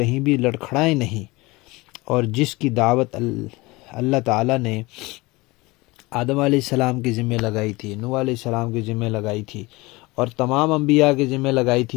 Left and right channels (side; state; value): right; quieter; 22.6 dB